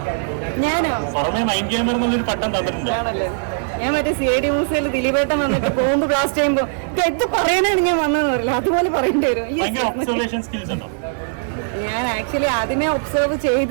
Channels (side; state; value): left; silent; 66 dB below the other